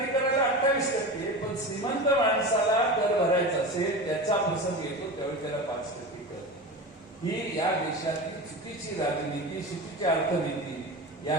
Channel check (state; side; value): normal; both; correlation 0.28